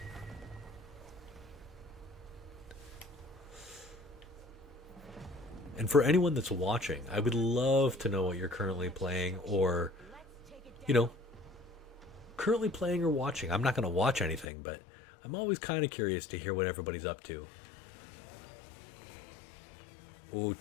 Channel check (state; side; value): drops out; right; at 14.5 s